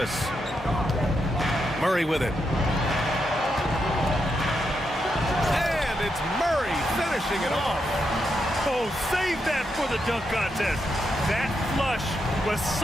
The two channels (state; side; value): normal; both; correlation 0.83